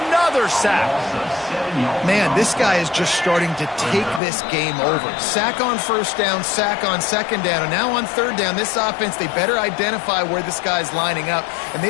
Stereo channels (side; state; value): right; drops out; at 4.2 s